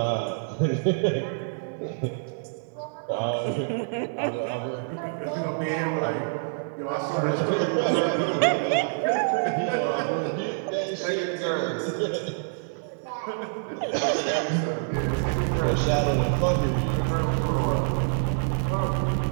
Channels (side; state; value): left; silent; digital silence